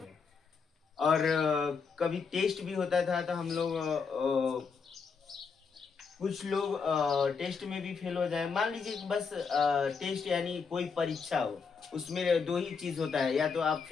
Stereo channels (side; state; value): right; quieter; 5.5 dB